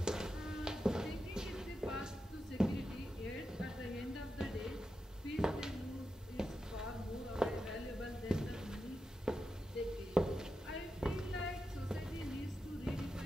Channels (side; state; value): both; normal; correlation 0.89